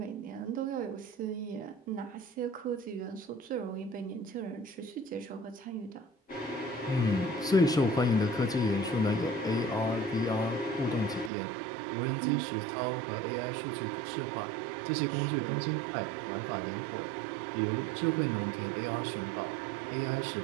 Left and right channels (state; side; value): drops out; left; at 11.3 s